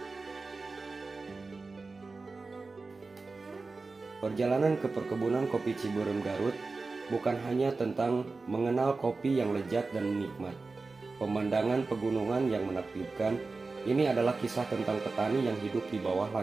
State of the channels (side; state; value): left; quieter; 3.9 dB